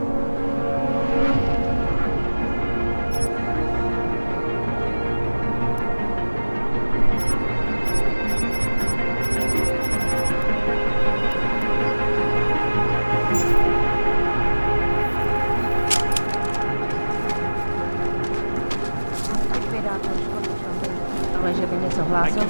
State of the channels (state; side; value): inverted; both; correlation -1.00